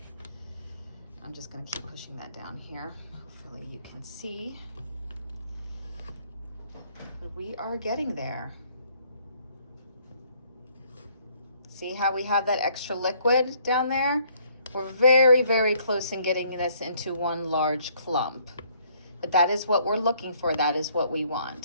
I'm just gonna keep pushing that down here. Hopefully you can see. But we are getting there. See how we have that extra liquid down there? We're very, very close in getting this into one large clump. But that is what we're looking for. That is what we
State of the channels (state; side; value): inverted; both; correlation -0.64